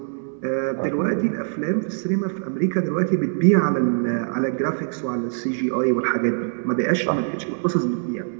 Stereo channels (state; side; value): silent; left; digital silence